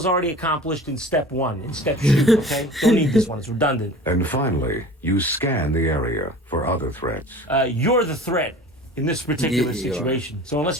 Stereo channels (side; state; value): both; normal; correlation 0.41